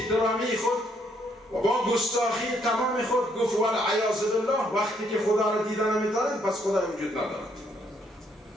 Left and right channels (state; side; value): normal; both; correlation 0.70